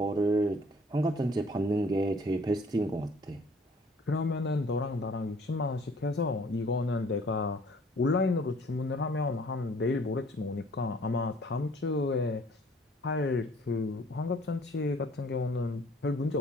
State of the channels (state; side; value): normal; both; correlation 0.56